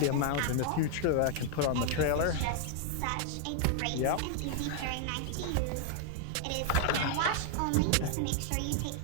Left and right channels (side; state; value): both; different; correlation 0.00